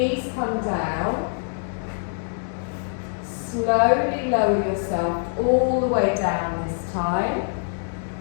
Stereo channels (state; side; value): silent; right; digital silence